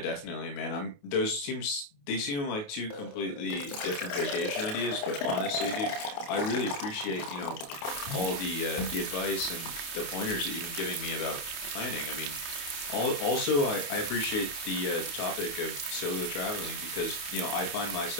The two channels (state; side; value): late; right; 28 ms